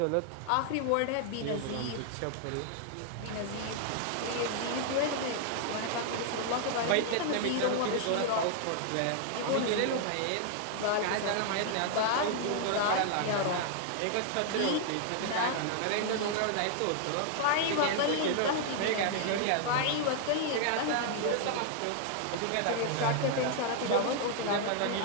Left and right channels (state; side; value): different; both; correlation 0.00